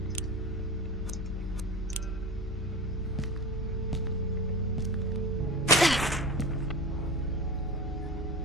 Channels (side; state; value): both; normal; correlation 0.28